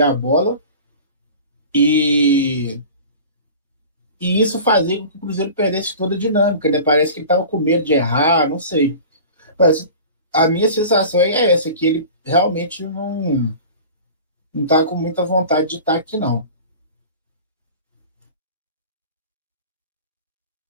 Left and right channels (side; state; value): both; inverted; correlation -0.39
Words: a bola e isso fazia com que o Cruzeiro perdesse toda a dinâmica, né? Parece que ele estava com medo de errar, não sei. Mas a minha sensação é essa, que ele realmente não está com muita vontade de estar aqui, não.